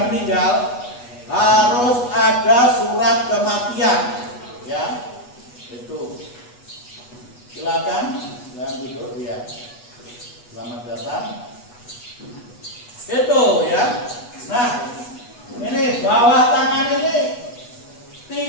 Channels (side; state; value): right; late; 8.2 ms